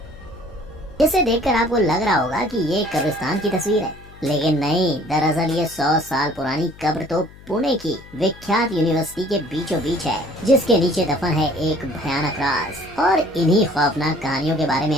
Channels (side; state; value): left; noise; hum, 21 dB below the sound